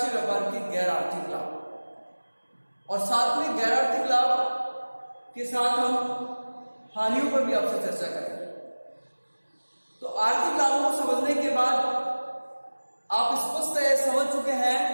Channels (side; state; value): both; inverted; correlation -1.00